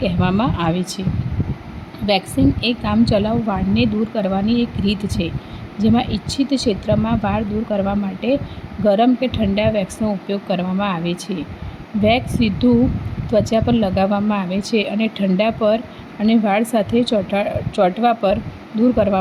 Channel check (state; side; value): identical; both; correlation 1.00